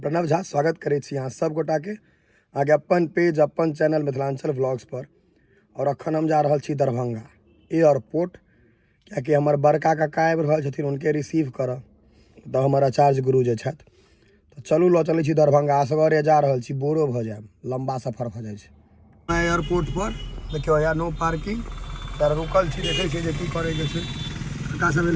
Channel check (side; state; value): both; identical; correlation 1.00